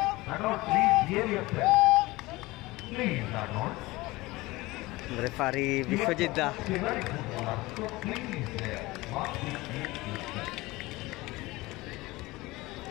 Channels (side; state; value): right; quieter; 20.7 dB